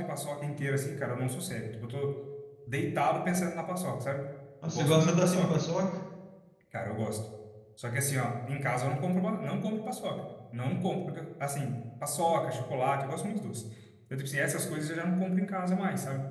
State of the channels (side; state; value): both; identical; correlation 1.00